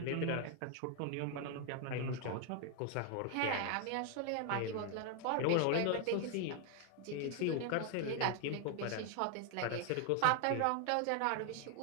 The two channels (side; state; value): both; different; correlation 0.00